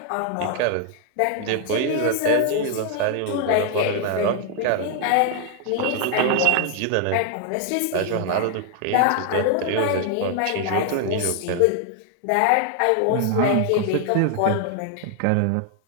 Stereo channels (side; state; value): both; different; correlation 0.00